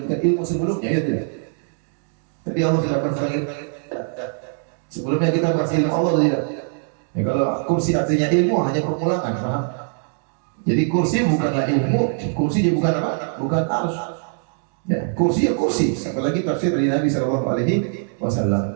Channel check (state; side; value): silent; left; 64 dB below the other